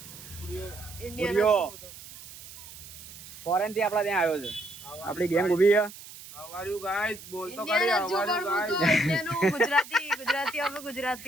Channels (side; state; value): right; noise; hiss, 16 dB below the sound